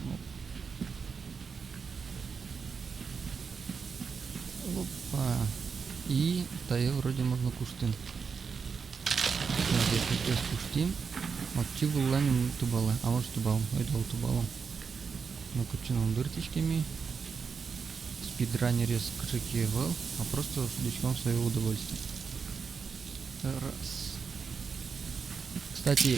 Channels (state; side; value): quieter; left; 5.7 dB